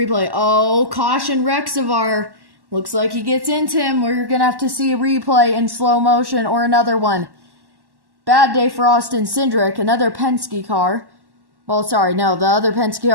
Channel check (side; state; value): left; late; 1.1 ms